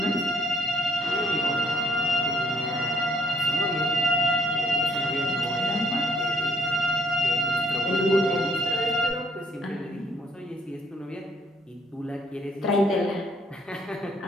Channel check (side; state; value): both; normal; correlation 0.66